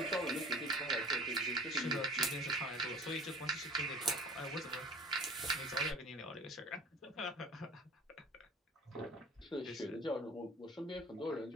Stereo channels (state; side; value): normal; both; correlation 0.45